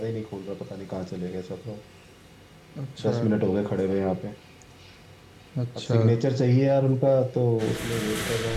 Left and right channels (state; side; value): identical; both; correlation 1.00